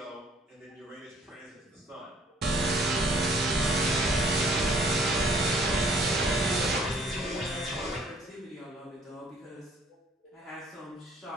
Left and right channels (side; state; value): both; normal; correlation 0.59